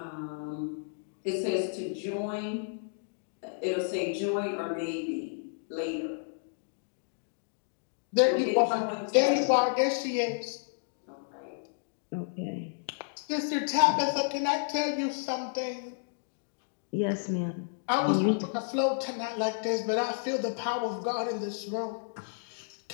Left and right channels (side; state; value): right; silent; digital silence